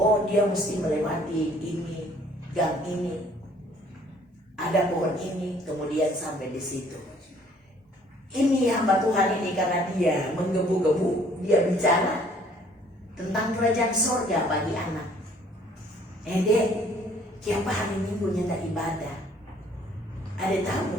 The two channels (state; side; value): normal; both; correlation 0.59